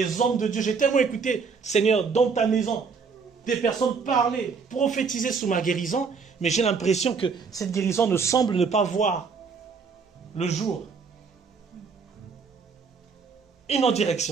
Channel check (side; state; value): left; quieter; 5.3 dB